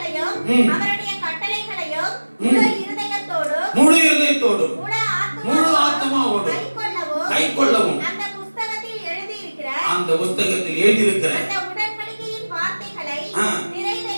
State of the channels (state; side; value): inverted; both; correlation -1.00